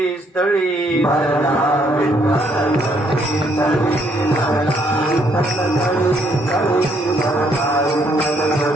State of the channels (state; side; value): normal; both; correlation 0.70